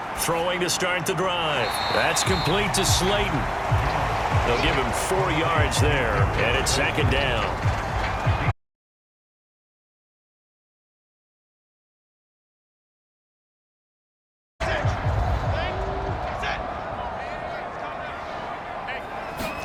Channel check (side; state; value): both; identical; correlation 1.00